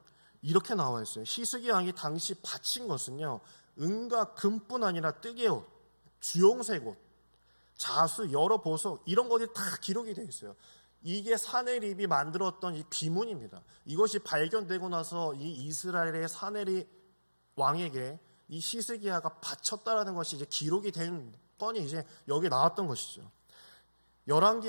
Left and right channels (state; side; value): inverted; both; correlation -1.00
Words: 이렇게 나와 있어요. 히스기야 왕이 당시 바친 것은요, 은과 금뿐 아니라 뜨개옷, 주홍색 옷, 자수, 여러 보석, 이런 것이 다 기록이 되어 있어요. 이게 사네립이 만들었던 이 비문입니다. 이것이 발견되고 나서 이 이스라엘의 사네립 왕에게 이 히스기야가 바쳤다라는 것이 이제 기록이 된 건이 이제 여기 나왔던 것이죠.